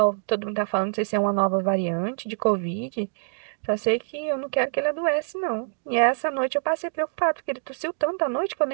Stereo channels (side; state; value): left; silent; digital silence